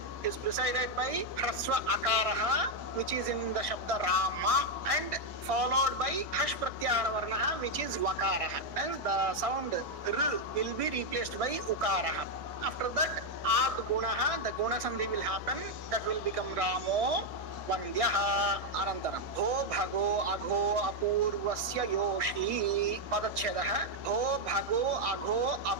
is preceded by hraswa akaraha, which is in the shabda rama, and followed by hash pratyahara varnaha, which is vakaraha. And the sound r will be replaced by ukaraha. After that, ad gunaha, the guna sandhi will happen. That will become ramo vandyaha. Anantaram bho bhago agho apurvasya yoshi padachhedaha. Bho bhago agho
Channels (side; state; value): left; late; 1.6 ms